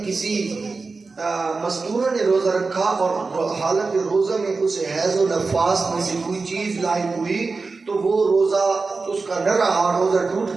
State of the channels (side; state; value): left; quieter; 4.1 dB